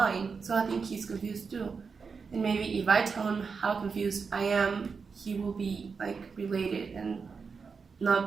So I think he's confused too. And maybe if I tell him how confused I am, he will be like related and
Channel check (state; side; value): quieter; left; 5.3 dB